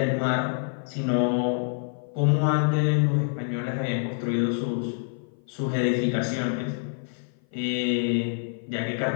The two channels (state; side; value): silent; right; 55 dB below the other